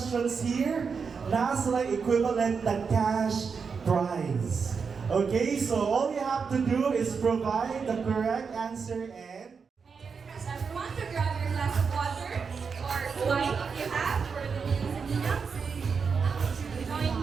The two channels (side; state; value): left; quieter; 5.6 dB